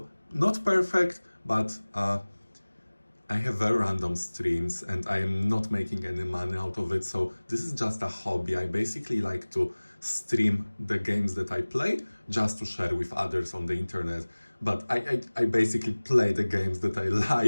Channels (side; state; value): both; inverted; correlation -1.00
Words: not perfect, but I have very random streams and I am not making any money out of it. So this is just a hobby. I basically like to stream the games that I play just to share with others on the internet. But I basically play the games that I